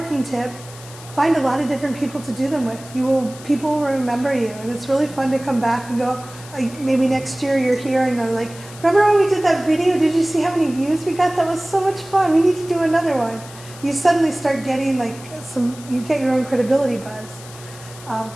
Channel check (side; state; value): left; noise; hiss, 18 dB below the sound